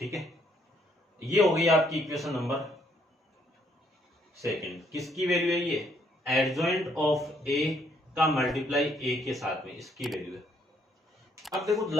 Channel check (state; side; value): normal; both; correlation 0.69